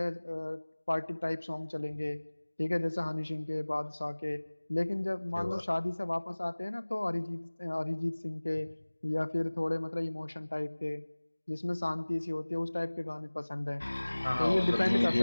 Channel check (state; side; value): inverted; both; correlation -1.00